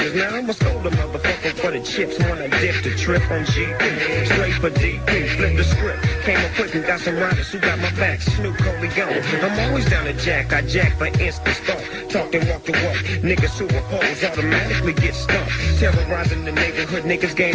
Now I'm a scold a motherfucker for the chips. Wanna dip the trip on GP. Straight for DP, flip the script. Came up quick and got some riders who got my back. Snoop Dogg. I'm always down to jack. I jack for instant thought. Talk and walk the walk. Niggas who oppose automatically get stumped. Terrorizing the neighborhood. Niggas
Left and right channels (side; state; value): both; identical; correlation 1.00